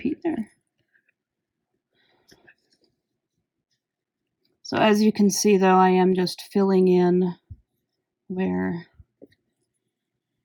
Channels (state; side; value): identical; both; correlation 1.00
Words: there. So as you can see, though, I am just filling in where